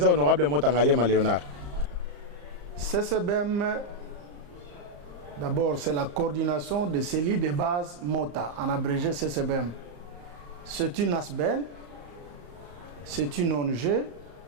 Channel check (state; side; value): late; left; 34 ms